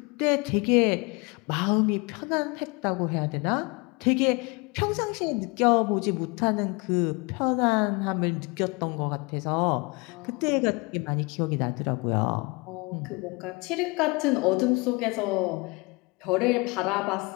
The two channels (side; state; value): right; quieter; 27.6 dB